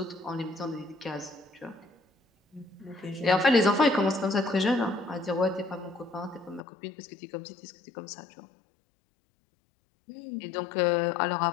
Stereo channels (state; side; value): drops out; right; at 6.6 s